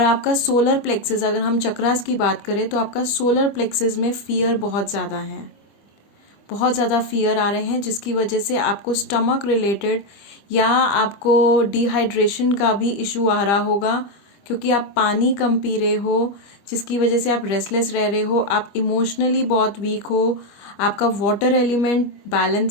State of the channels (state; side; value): late; right; 25 ms